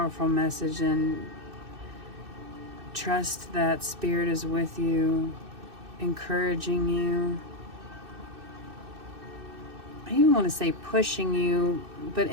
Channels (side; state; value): left; late; 2.6 ms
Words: message, and trust that Spirit is with you, encouraging you. I even want to say pushing you, but